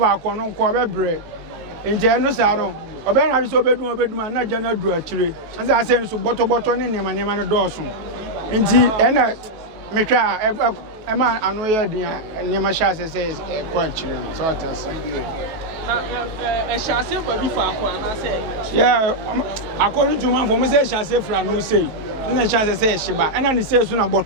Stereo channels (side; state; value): left; late; 18 ms